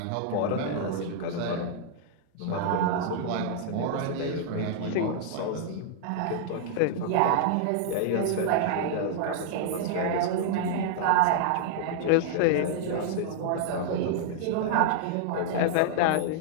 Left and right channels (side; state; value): both; different; correlation -0.01